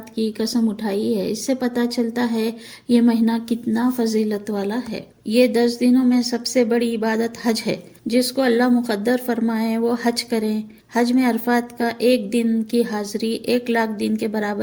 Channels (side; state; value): both; identical; correlation 1.00